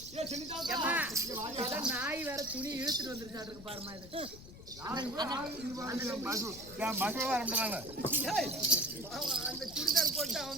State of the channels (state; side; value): noise; left; rumble, 16 dB below the sound